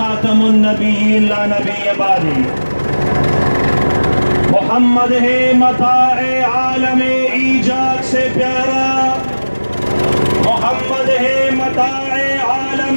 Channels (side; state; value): both; inverted; correlation -1.00